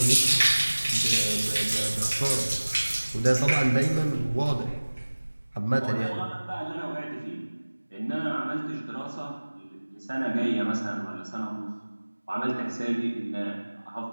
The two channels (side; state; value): both; inverted; correlation -1.00